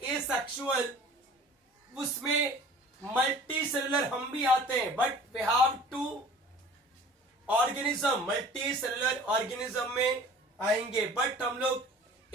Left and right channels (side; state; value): both; normal; correlation 0.46